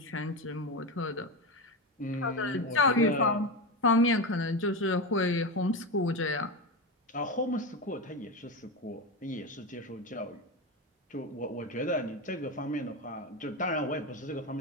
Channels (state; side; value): normal; both; correlation 0.17